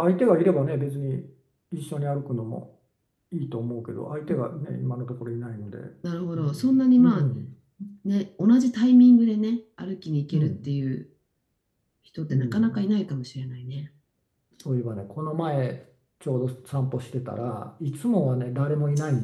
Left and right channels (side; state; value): both; identical; correlation 1.00